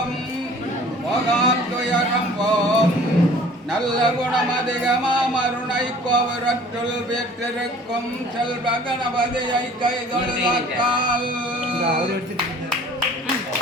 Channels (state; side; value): normal; both; correlation 0.50